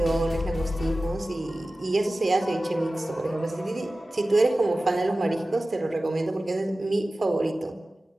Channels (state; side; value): normal; both; correlation 0.96